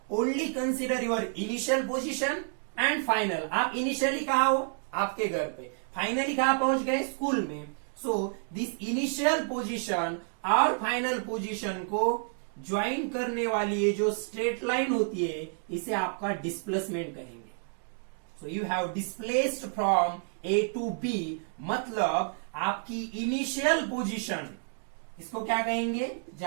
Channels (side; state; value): left; silent; 58 dB below the other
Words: only consider your initial position and final. आप initially कहाँ हो? आपके घर पे. Finally कहाँ पहुंच गए? स्कूल में. So, this initial position और final position को ज्वाइन करने वाली ये जो स्ट्रेट लाइन होती है, इसे आपका डिस्प्लेसमेंट कहेंगे. So you have displaced from A to B, मतलब आपकी इनिशियल पोजीशन, इसको क्या कहेंगे?